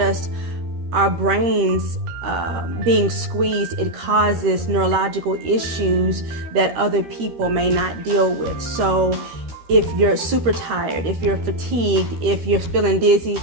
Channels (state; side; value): late; left; 13 ms